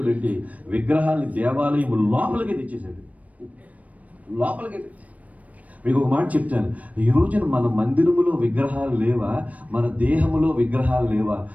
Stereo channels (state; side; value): late; left; 0.069 ms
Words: అంటే విగ్రహాన్ని దేవాలయం లోపలికి తెచ్చేసాడు. మీకు ఒక మాట చెప్తాను, ఈ రోజున మన మందిరములో విగ్రహాలు లేవా? మన దేహములో విగ్రహాలు లేవా?